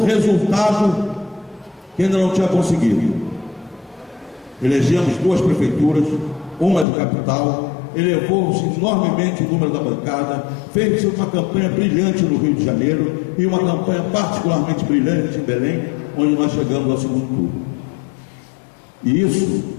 resultado que ainda não tinha conseguido. Elegemos 2 prefeituras, uma de capital, elevou-se enormemente o número da bancada, fez uma campanha brilhante no Rio de Janeiro e uma campanha particularmente brilhante em Belém, onde nós chegamos ao segundo turno. E isso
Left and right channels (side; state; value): right; drops out; at 6.9 s